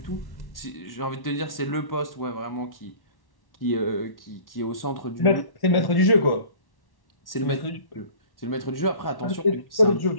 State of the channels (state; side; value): late; right; 1.1 ms